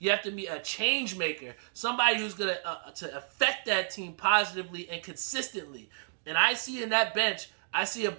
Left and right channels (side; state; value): left; silent; digital silence